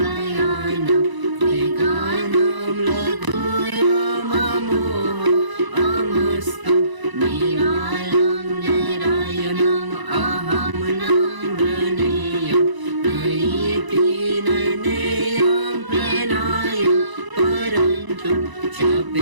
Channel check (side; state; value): left; late; 1.0 ms